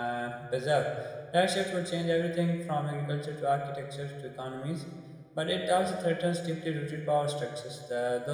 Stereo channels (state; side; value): identical; both; correlation 1.00